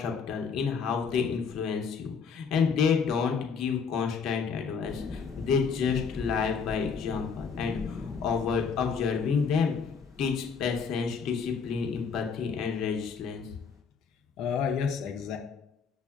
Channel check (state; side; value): quieter; right; 5.9 dB